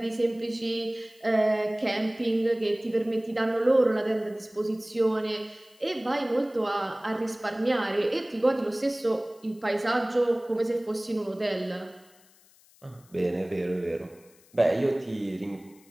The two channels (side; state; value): left; noise; hiss, 29 dB below the sound